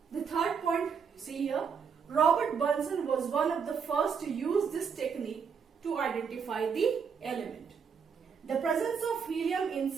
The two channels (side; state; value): left; quieter; 6.4 dB